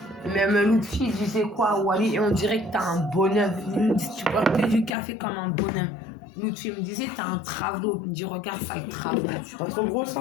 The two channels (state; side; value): drops out; right; at 4.9 s